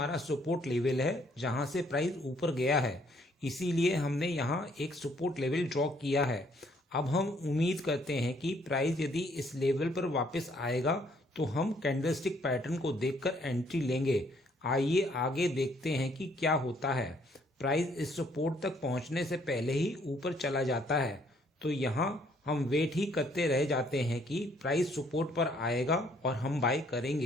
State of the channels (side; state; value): both; normal; correlation 0.66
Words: सपोर्ट लेवल है जहां से प्राइस ऊपर गया है, इसीलिए हमने यहाँ एक सपोर्ट लेवल ड्रॉ किया है। अब हम उम्मीद करते हैं कि प्राइस यदि इस लेवल पर वापस आएगा तो हम कैंडलस्टिक पैटर्न को देखकर एंट्री लेंगे। आइए आगे देखते हैं कि क्या होता है। प्राइस इस सपोर्ट तक पहुंचने से पहले ही ऊपर चला जाता है, तो यहाँ हम वेट ही करते रह जाते हैं कि प्राइस सपोर्ट पर आएगा और हम बाय